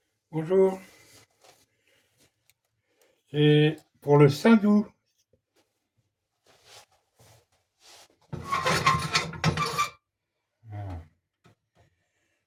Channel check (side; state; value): both; identical; correlation 1.00